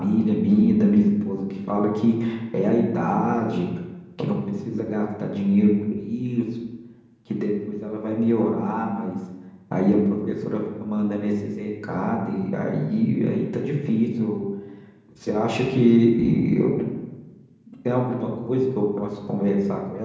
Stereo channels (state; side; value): identical; both; correlation 1.00